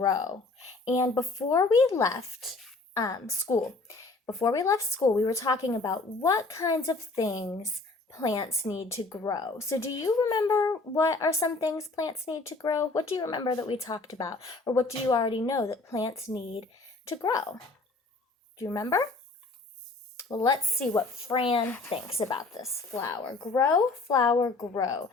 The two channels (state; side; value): quieter; right; 3.5 dB